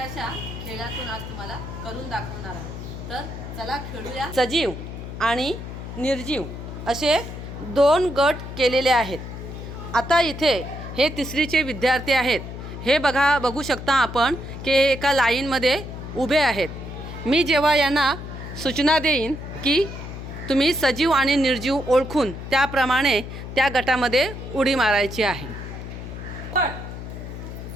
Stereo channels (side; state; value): left; noise; hum, 9 dB below the sound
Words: खेळातून आज तुम्हाला करून दाखवणार आहोत। तर चला खेळूया। सजीव आणि निर्जीव असे दोन गट केलेले आहेत। आता इथे हे तिसरीचे विद्यार्थी आहेत। हे बघू शकता आपण की एका लाईनमध्ये उभे आहेत। मी जेव्हा यांना सूचना देईन की तुम्ही सजीव आणि निर्जीव ओळखून त्याप्रमाणे त्या गटामध्ये उडी मारायची आहे।